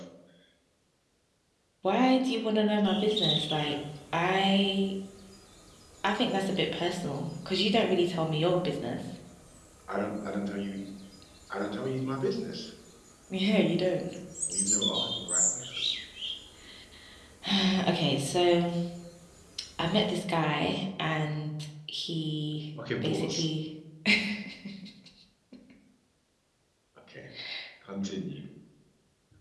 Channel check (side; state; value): both; identical; correlation 1.00